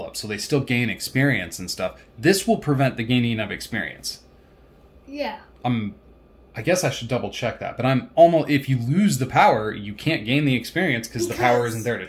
up, so they still gain experience and stuff. This will prevent the gaining of experience. Yeah. I guess I should double check that, but I'm almost, if you lose the power, you can't gain the experience because the power isn't there to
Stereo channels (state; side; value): identical; both; correlation 1.00